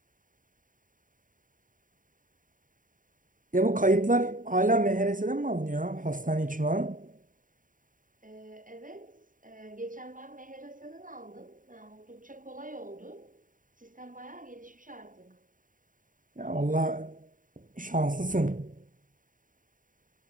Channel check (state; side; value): late; left; 0.39 ms